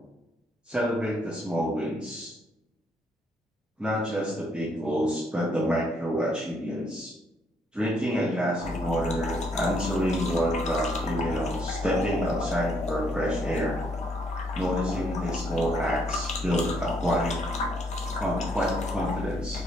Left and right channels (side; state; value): both; normal; correlation 0.70